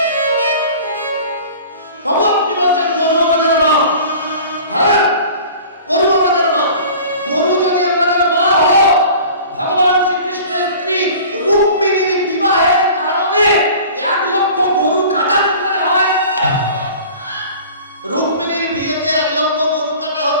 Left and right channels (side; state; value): both; inverted; correlation -0.43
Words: তবু আপনি বলছেন গরু আমাদের মা। হ্যাঁ, গরু আমাদের মা। গরু যদি আমাদের মা হলো, ভগবান শ্রীকৃষ্ণের স্ত্রী রুক্মিণীর বিবাহের কারণে ১,০০,০০০ গরু কাটা করে হয়। রুক্মিণীর বিয়েতে ১,০০,০০০ গরু কাটা